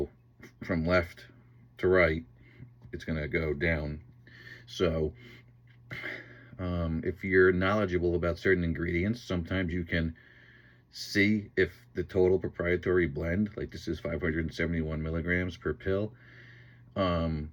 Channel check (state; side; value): identical; both; correlation 1.00